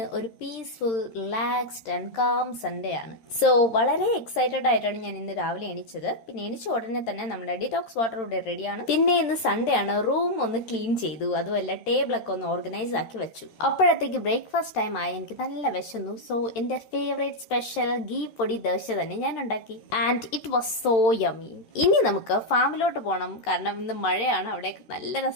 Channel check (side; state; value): right; late; 13 ms